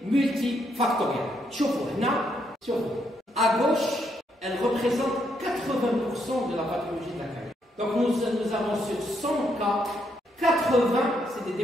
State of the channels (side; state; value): both; normal; correlation 0.76